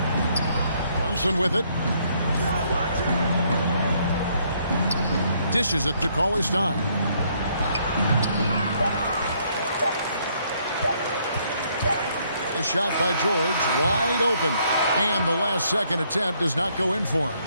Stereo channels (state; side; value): inverted; both; correlation -0.69